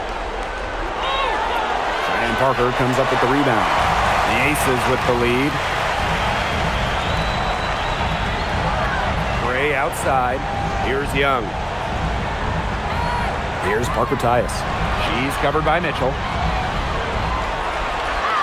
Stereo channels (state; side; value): identical; both; correlation 1.00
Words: Cheyenne Parker comes up with the rebound. The Aces with the lead. Gray outside. Here's Young. Here's Parker Tyus. She's covered by Mitchell.